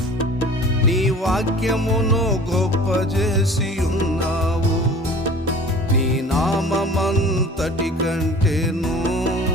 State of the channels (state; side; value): normal; both; correlation 0.44